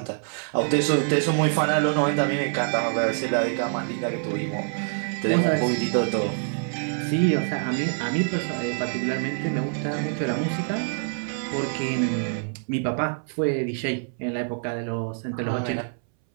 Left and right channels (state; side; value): silent; left; 61 dB below the other